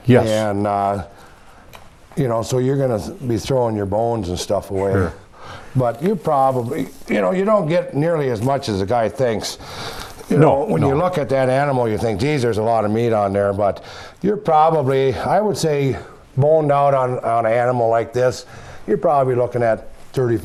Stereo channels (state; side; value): identical; both; correlation 1.00